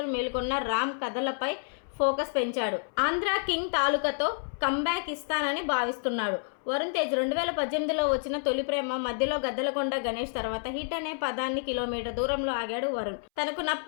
మేల్కొన్న రామ్ కథలపై ఫోకస్ పెంచాడు. ఆంధ్ర కింగ్ తాలూకాతో కంబ్యాక్ ఇస్తానని భావిస్తున్నాడు. వరుణ్ తేజ్ 2018లో వచ్చిన తొలి ప్రేమ, మధ్యలో గద్దలకొండ గణేష్ తర్వాత హిట్ అనే పదాన్ని కిలోమీటర్ దూరంలో ఆగాడు వరుణ్. తనకు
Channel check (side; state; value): right; silent; 58 dB below the other